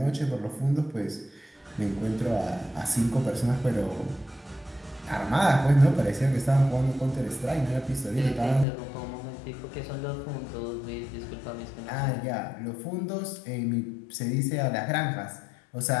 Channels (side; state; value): right; drops out; at 8.7 s